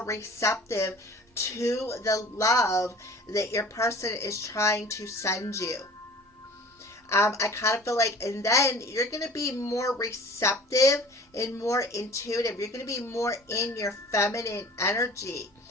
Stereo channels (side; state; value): both; normal; correlation 0.45